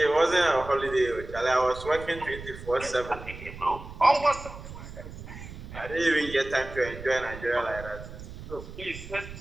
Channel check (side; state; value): right; noise; rumble, 13 dB below the sound